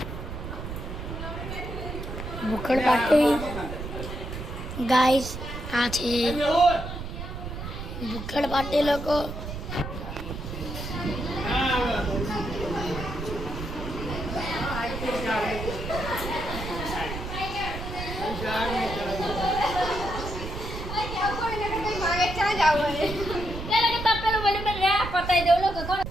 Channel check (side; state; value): right; noise; rumble, 7 dB below the sound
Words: ભૂખડ પાર્ટી ગાઈસ આ છે ભૂકડ પાર્ટી લોકો.